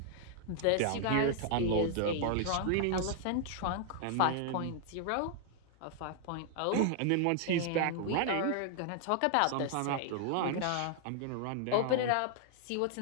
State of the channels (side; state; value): both; different; correlation 0.00